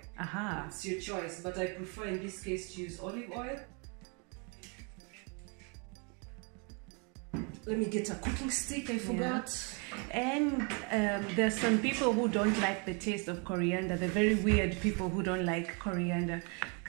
Aha. It's your choice, but I prefer in this case to use olive oil. Let me get a cooking stick, I forgot. And there's some people who don't like the taste of coriander. They're very weird people who don't like coriander.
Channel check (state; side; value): quieter; left; 34.7 dB